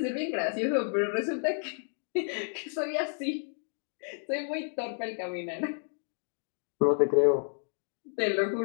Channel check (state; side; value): silent; right; 57 dB below the other